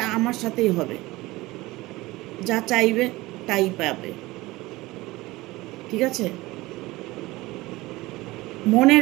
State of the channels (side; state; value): left; quieter; 19.9 dB